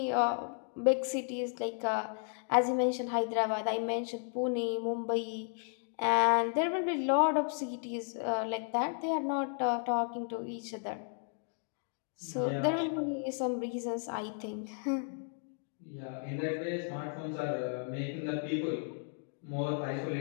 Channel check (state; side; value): silent; right; 55 dB below the other